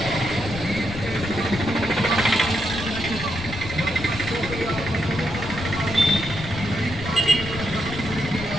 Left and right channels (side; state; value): left; noise; rumble, 9 dB below the sound